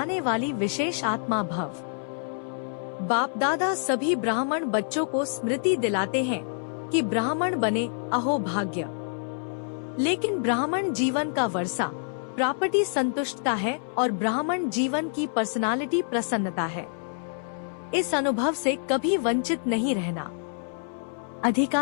वाली विशेष आत्मा भव। बाप दादा सभी ब्राह्मण बच्चों को स्मृति दिलाते हैं कि ब्राह्मण बने, अहो भाग्य। लेकिन ब्राह्मण जीवन का वर्षा प्रॉपर्टी संतुष्टता है और ब्राह्मण जीवन की पर्सनालिटी प्रसन्नता है। इस अनुभव से कभी वंचित नहीं रहना।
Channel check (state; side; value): silent; right; 60 dB below the other